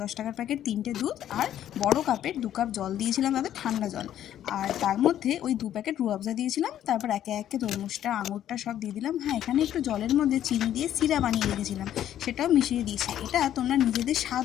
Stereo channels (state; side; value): quieter; right; 11.3 dB